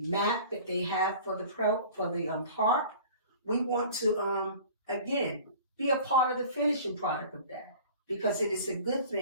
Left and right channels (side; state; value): both; inverted; correlation -0.44